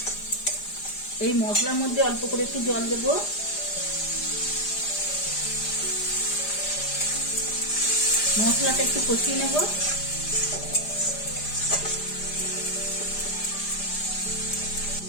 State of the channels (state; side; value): late; right; 5.0 ms